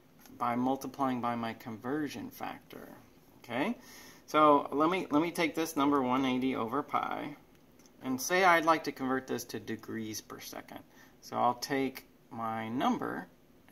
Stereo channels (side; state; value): both; identical; correlation 1.00